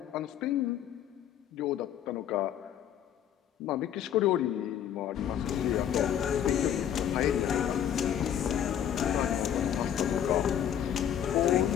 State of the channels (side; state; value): right; quieter; 9.8 dB